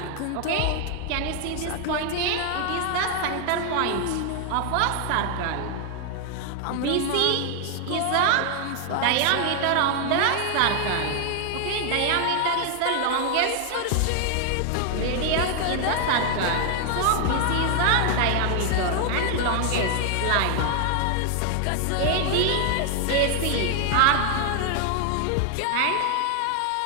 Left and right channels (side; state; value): both; different; correlation 0.00